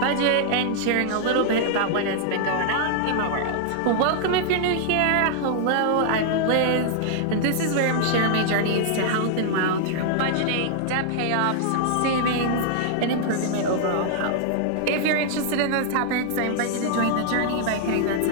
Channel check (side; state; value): both; different; correlation -0.01